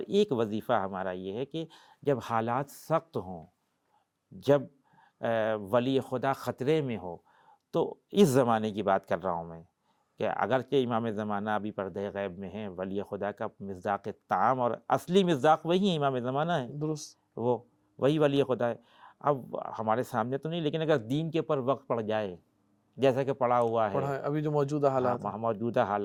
وظیفہ ہمارا یہ ہے کہ جب حالات سخت ہوں، جب ولی خدا خطرے میں ہو، تو اس زمانے کی بات کر رہا ہوں میں کہ اگرچہ امام زمانہ ابھی پردہ غیب میں ہیں، ولی خدا کا مصداق طعام اور اصلی مصداق وہی ہے، امام زمانہ ہے، درست. وہ وہی ولی خدا ہے. اب ہمارے سامنے تو نہیں، لیکن اگر دین کے اوپر وقت پڑ جائے جیسا کہ پڑا ہوا ہے ابھی جو موجودہ حالات ہیں، موجودہ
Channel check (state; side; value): identical; both; correlation 1.00